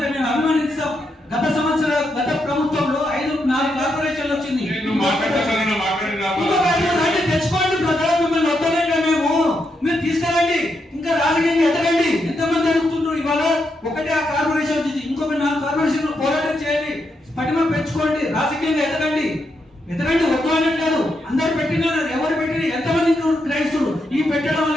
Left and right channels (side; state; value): both; normal; correlation 0.82